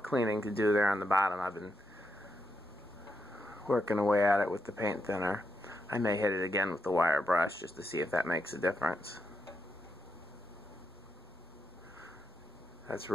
to do there on the bottom. I've been working away at it with the paint thinner. I may hit it again with the wire brush just to see if that makes a difference. That's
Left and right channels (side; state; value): both; normal; correlation 0.83